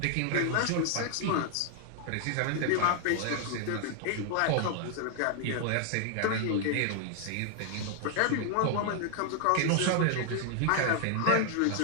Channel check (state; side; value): different; both; correlation 0.00